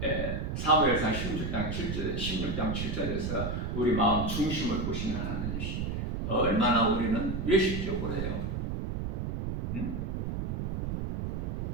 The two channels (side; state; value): right; noise; rumble, 2 dB below the sound